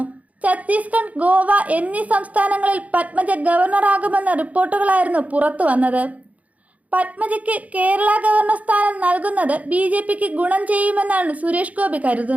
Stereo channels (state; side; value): late; left; 0.070 ms